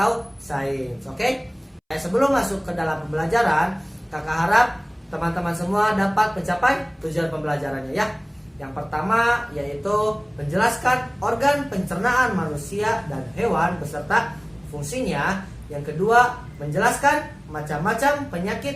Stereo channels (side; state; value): both; identical; correlation 1.00